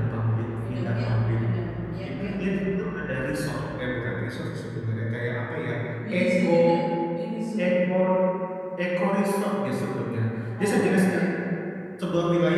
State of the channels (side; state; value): both; identical; correlation 1.00